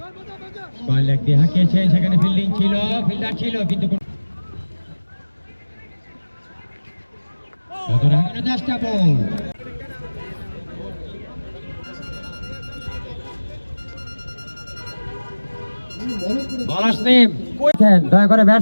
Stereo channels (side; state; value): both; inverted; correlation -1.00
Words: লেগ দিয়ে হাঁকিয়েছেন, সেখানে ফিল্ডিং ছিল, ফিল্ডার ছিল, কিন্তু চেষ্টা বল। দয়া করে